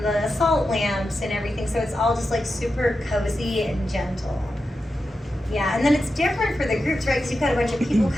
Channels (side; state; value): both; normal; correlation 0.90